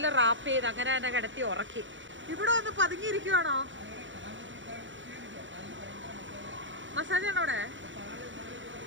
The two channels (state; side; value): late; left; 0.55 ms